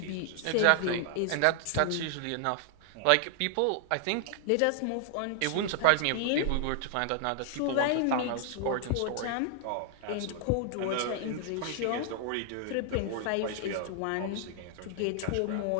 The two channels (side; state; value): both; different; correlation 0.00